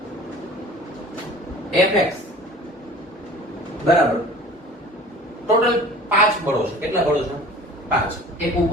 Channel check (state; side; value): normal; both; correlation 0.44